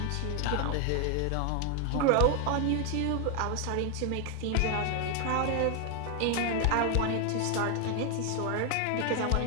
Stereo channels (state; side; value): different; both; correlation 0.01